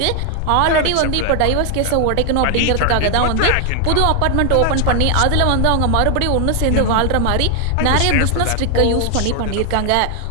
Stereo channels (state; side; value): different; both; correlation 0.00